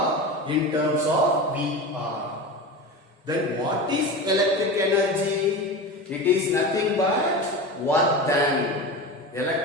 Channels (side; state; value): both; normal; correlation 0.27